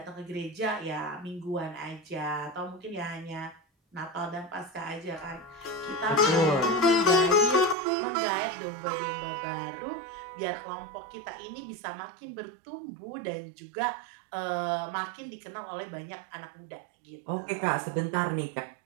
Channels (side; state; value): left; drops out; at 7.8 s